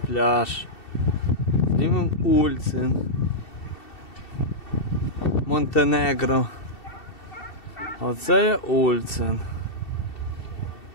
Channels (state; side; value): late; right; 2.7 ms